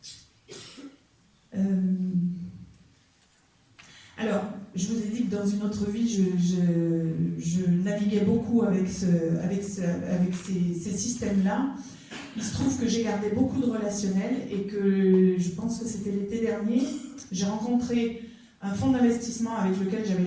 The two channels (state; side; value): identical; both; correlation 1.00